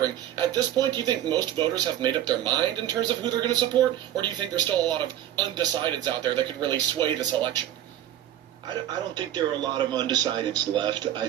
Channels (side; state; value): left; quieter; 11.8 dB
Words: at this point, do you think most voters have made up their mind in terms of who they're going to support, or do you think there's still a lot of undecideds out there that could really sway this election? I don't think there are a lot of undecideds left. I